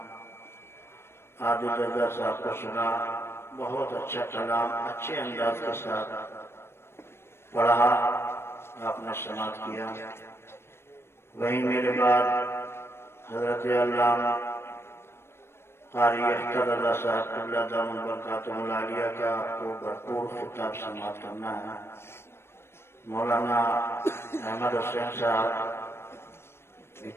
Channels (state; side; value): late; right; 0.12 ms